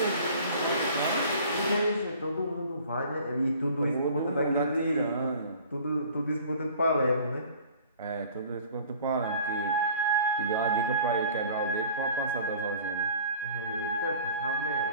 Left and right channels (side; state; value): both; inverted; correlation -0.48